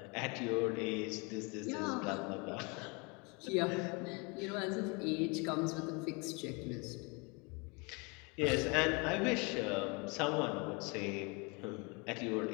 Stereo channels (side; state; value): right; quieter; 30.2 dB